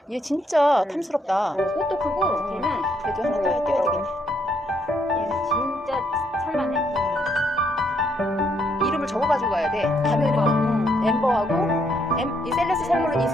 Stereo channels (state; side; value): normal; both; correlation 0.73